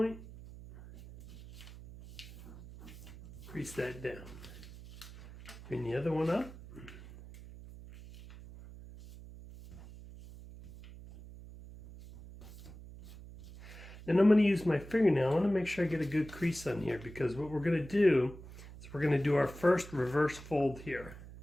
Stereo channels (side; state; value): right; noise; hum, 16 dB below the sound